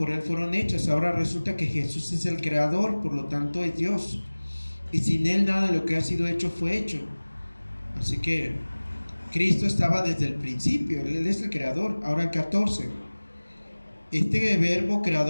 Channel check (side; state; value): both; inverted; correlation -1.00